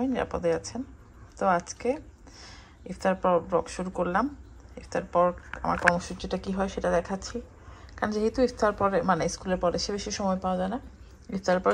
নিরাপদে আছেন। তো আজকে ইফতার পর ব্লগ শুরু করলাম। ইফতার পর আমার কর্মসূচিটা কী হয় সেটা দেখাচ্ছি, কারণ যেহেতু ইফতার পরে মানে স্কুলের পরে সে বেশি সময় পাওয়া যায় না, ইফতারের পর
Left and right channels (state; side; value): identical; both; correlation 1.00